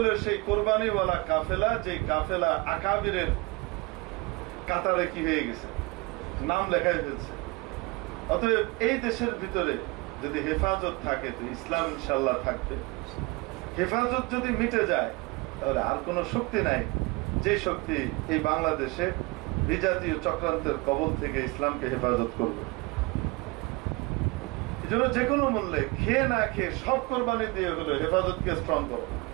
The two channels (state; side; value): quieter; left; 25.3 dB